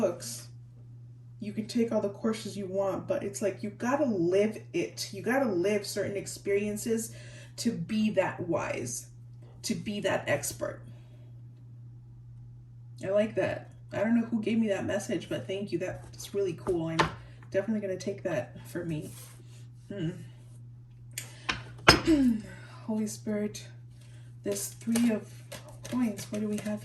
You can take all the courses you want, but it's like, you gotta live it. You gotta live certain experiences to be that wise, to be that expert. I like that. I don't know who gave me that message, but thank you. That's really cool. I'm definitely going to take that for me. Holy Spirit, this 3 of coins. What do we have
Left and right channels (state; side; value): identical; both; correlation 1.00